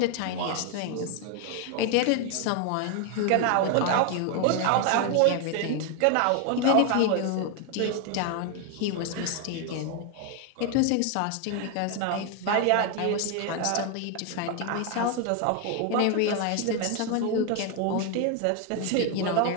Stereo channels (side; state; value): both; different; correlation 0.01